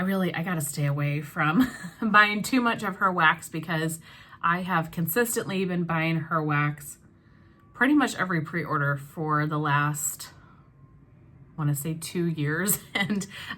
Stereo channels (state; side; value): identical; both; correlation 1.00